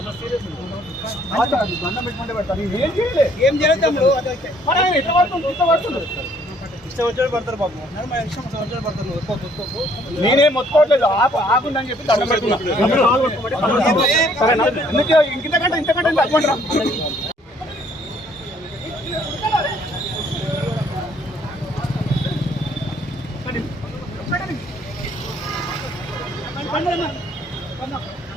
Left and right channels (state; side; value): normal; both; correlation 0.63